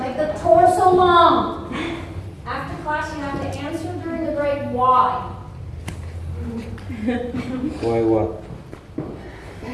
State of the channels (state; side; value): identical; both; correlation 1.00